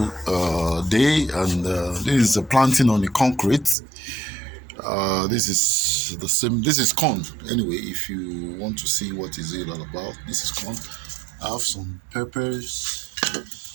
day, and this is a planting on the concrete. This is the same. This is corn. Anyway, if you want to see what is it all about, this is corn. I have some peppers.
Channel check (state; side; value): drops out; left; at 3.8 s